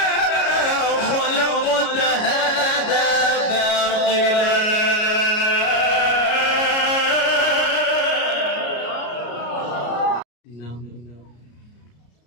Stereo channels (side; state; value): right; late; 33 ms